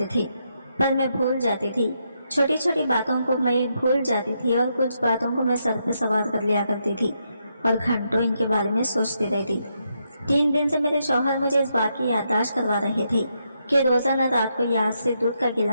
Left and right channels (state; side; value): inverted; both; correlation -0.80